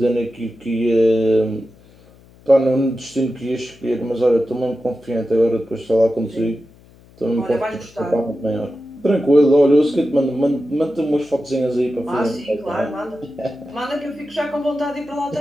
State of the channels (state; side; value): noise; left; hum, 26 dB below the sound